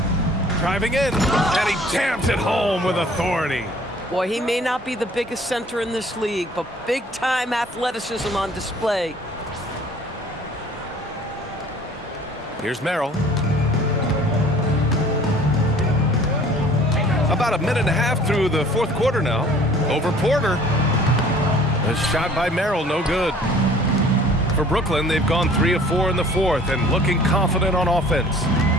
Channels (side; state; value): both; normal; correlation 0.52